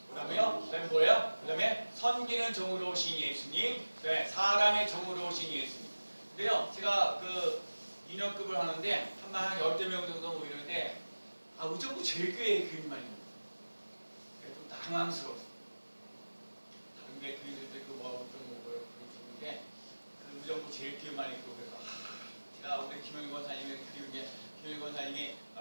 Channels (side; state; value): both; inverted; correlation -1.00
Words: 그다음에요. 그다음에 뭐예요? 그다음에 섬기는 종으로 오신 예수님. 사람의 종으로 오신 예수님. 근데요, 제가 그 2년급을 하는데 한 10명 정도 모이는데 의정부 제일교회 교인만 있는 거예요. 좀 당황스러웠어요. 다른 게 교인들도 그 그런데 그 의정부 제일교회만 있고 그래서 제가 우리 김영희 권사님이 그리운 게 김영희 권사님이